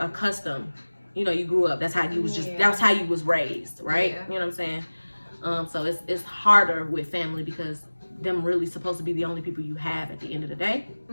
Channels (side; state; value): both; inverted; correlation -1.00